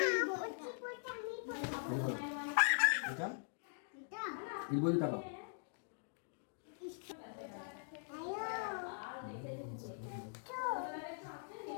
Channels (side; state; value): right; silent; digital silence